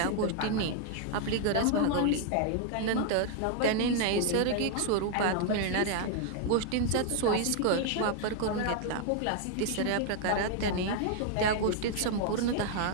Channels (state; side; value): different; both; correlation 0.00